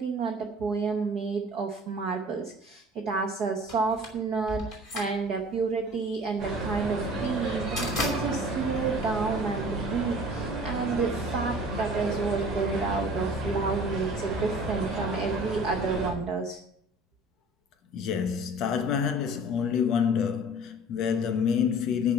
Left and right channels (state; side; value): normal; both; correlation 0.45